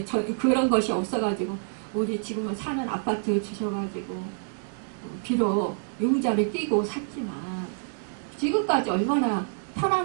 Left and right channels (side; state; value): left; silent; digital silence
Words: 그런 것이 없어가지고 우리 지금은 사는 아파트 주셔가지고 비록 융자를 끼고 샀지만 지금까지 얼마나